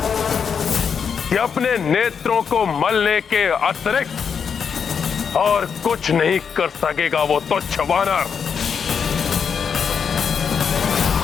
कि अपने नेत्रों को मलने के अतिरिक्त और कुछ नहीं कर सकेगा वो तुच्छ वानर।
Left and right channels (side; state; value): right; quieter; 6.7 dB